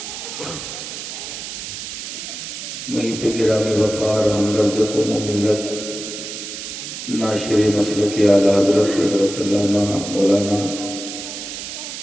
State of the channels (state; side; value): noise; right; hiss, 8 dB below the sound